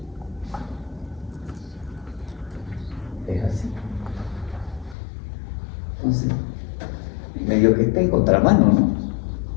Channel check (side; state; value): right; drops out; at 5.0 s